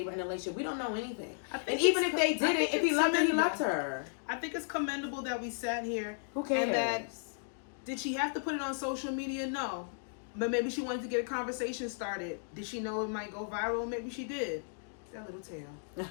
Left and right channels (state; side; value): silent; right; digital silence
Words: were in a relationship. We don't know anything. And even if they did it, if he loved her, he loved her. I think it's commendable that we sat here. Who cares? And that, did she have to put it on social media? No. But maybe she wanted to get a conversation started. Did she know it might go viral? Maybe she did. That little tail.